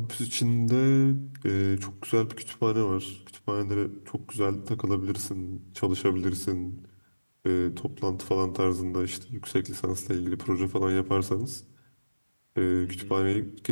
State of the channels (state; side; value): inverted; both; correlation -1.00